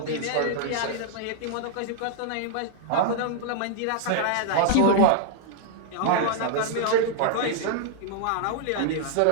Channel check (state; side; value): different; both; correlation -0.01